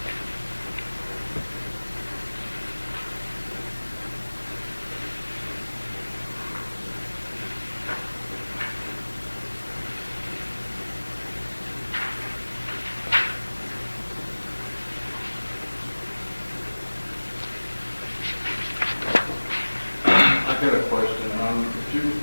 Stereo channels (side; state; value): both; inverted; correlation -1.00